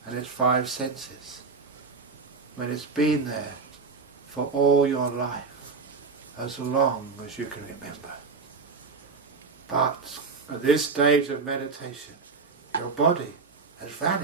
and its 5 senses when it's been there for all your life, as long as you can remember? But at this stage of meditation, your body has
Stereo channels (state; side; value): quieter; left; 4.6 dB